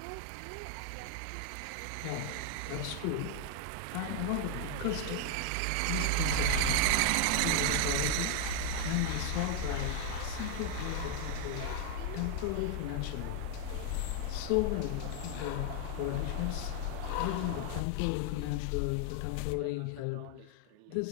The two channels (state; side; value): different; both; correlation 0.01